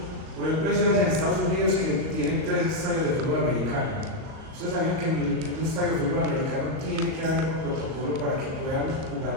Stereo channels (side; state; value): left; late; 38 ms